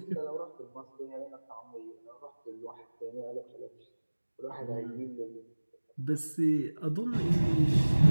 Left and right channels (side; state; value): both; inverted; correlation -1.00